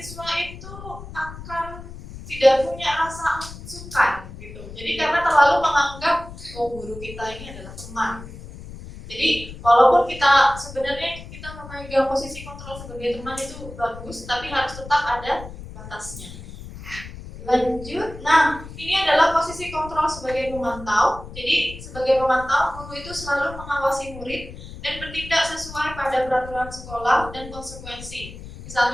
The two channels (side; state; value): left; noise; rumble, 14 dB below the sound